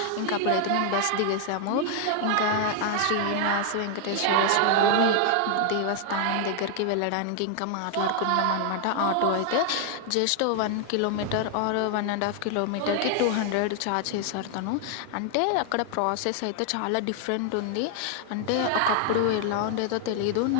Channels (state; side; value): different; both; correlation 0.00